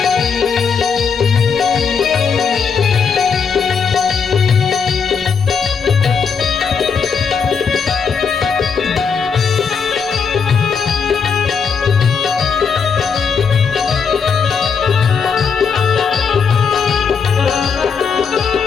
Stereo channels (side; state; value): right; quieter; 6.0 dB